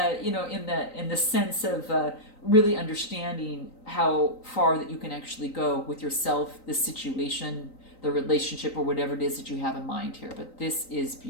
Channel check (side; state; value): right; late; 3.9 ms